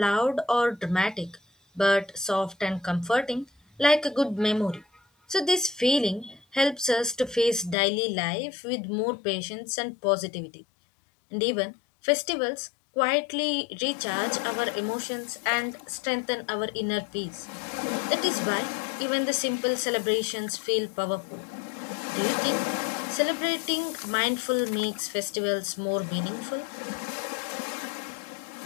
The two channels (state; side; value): drops out; right; at 7.8 s